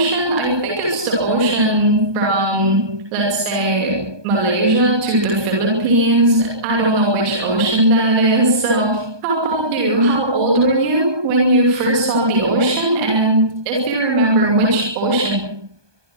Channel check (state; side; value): late; left; 1.2 ms